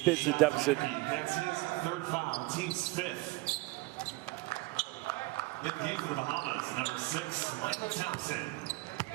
into the deficit. That's his third foul, team's 5th. In the game for the Bahamas, number 6, Michael Thompson.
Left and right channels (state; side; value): quieter; left; 21.9 dB